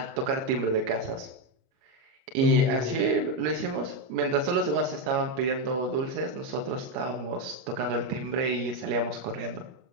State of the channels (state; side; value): late; left; 29 ms